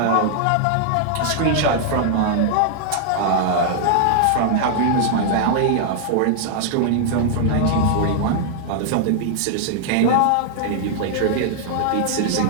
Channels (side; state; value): both; different; correlation -0.01